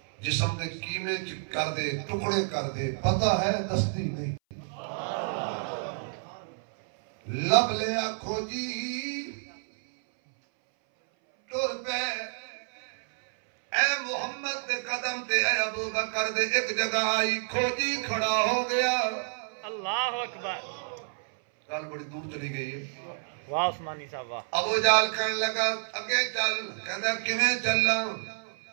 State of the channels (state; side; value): silent; left; 58 dB below the other